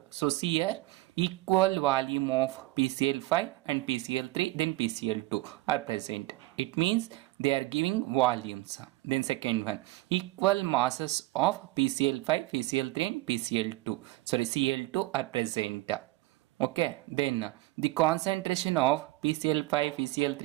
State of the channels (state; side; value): quieter; left; 19.0 dB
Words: so see here equal volume of PCl5 and PCl3 then PCl2 are present. It means they are giving volumes. Then second one, equal masses of PCl5, PCl3 and PCl2 Cl2 are present. Okay, then the concentration of PCl5, PCl3